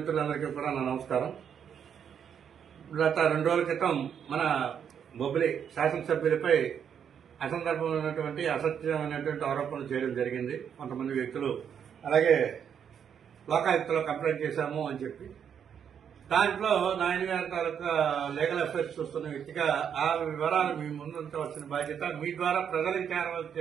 కూడా నా నమస్కారం. గత 2 రోజుల క్రితం మన బొబ్బిలి శాసనసభ్యులపై అసందర్భమైనటువంటి అసత్యమైనటువంటి ఆరోపణలు చేయడం జరిగింది. కొంతమంది వ్యక్తులు అలాగే లోకాయుక్తలో కంప్లైంట్ చేశాము అని చెప్పి దాంట్లో నాయన గారి తాలూకా లీగల్ అఫైర్స్ చూస్తున్న వ్యక్తిగా ఆ వివరాలు మీ ముందుంచవలసిన బాధ్యత, మీ ద్వారా ప్రజలకు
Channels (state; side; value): quieter; left; 8.0 dB